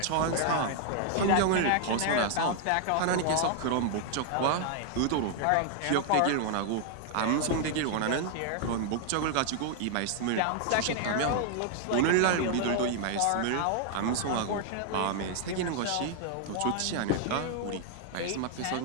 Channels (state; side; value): different; both; correlation 0.00